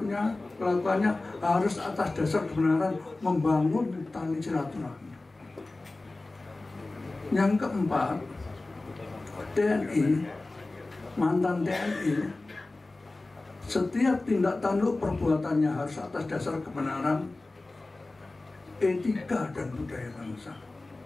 kelakuannya harus atas dasar kebenaran membangun tali silaturahmi. Yang keempat, TNI, mantan TNI, setiap tindak tanduk perbuatannya harus atas dasar kebenaran, etika dan budaya bangsa.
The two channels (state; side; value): quieter; right; 3.1 dB